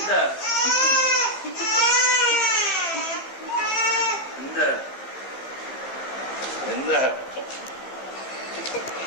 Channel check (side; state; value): right; late; 15 ms